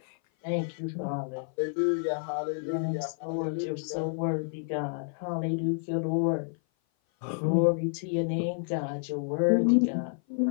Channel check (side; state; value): right; silent; 56 dB below the other